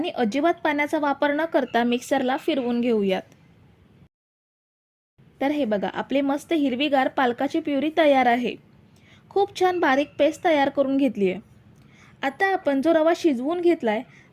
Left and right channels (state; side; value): identical; both; correlation 1.00